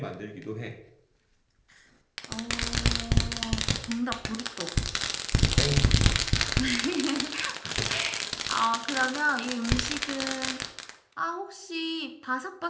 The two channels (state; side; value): identical; both; correlation 1.00